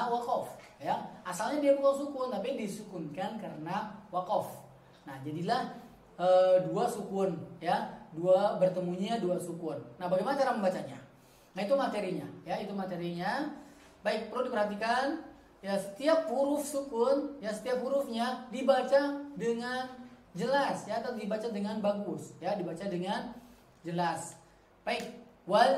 waqaf ya. Asalnya dia bukan sukun tapi disukunkan karena waqaf. Nah, jadilah dua sukun ya, bertemunya dua sukun. Nah, bagaimana cara membacanya? Nah, itu materinya ya, itu materinya. Baik, perlu diperhatikan ya, setiap huruf sukun ya, setiap hurufnya dibaca dengan jelas ya, atau dibaca dengan bagus ya, dibaca dengan jelas. Baik,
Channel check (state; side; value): identical; both; correlation 1.00